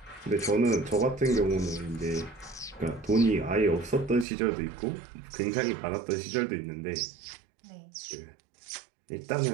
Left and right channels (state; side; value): drops out; left; at 4.2 s